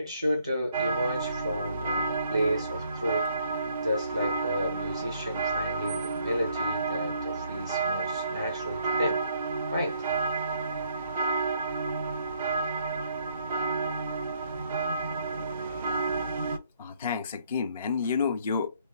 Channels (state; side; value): inverted; both; correlation -0.68